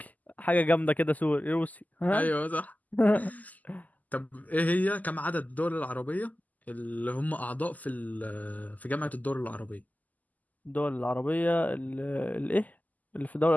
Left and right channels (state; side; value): late; right; 0.079 ms